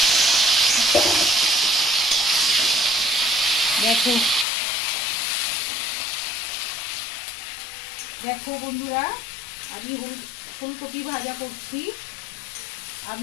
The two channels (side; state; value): right; drops out; at 4.5 s